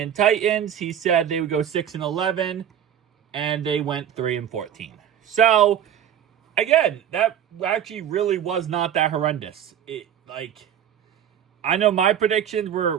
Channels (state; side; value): quieter; left; 9.7 dB